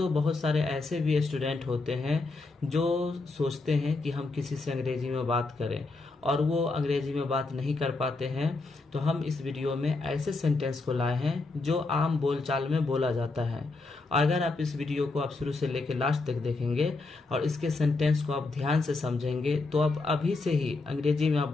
बहुत सारे ऐसे भी स्टूडेंट होते हैं जो सोचते हैं कि हम किसी से अंग्रेजी में बात करें और वो अंग्रेजी में बात नहीं कर पाते हैं। तो हम इस वीडियो में ऐसे सेंटेंस को लाए हैं जो आम बोलचाल में बोला जाता है। अगर आप इस वीडियो को आप शुरू से लेकर लास्ट तक देखेंगे और इसके सेंटेंस को आप ध्यान से समझेंगे तो आप अभी से ही अंग्रेजी में आप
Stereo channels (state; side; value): quieter; right; 3.6 dB